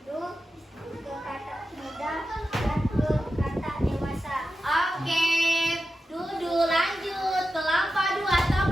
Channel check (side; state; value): both; normal; correlation 0.91